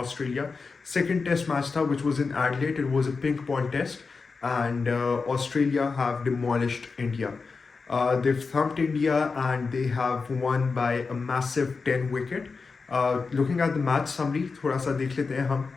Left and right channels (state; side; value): quieter; right; 4.6 dB